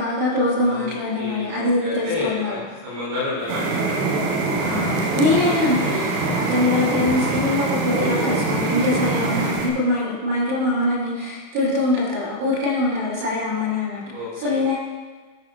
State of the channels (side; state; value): left; late; 34 ms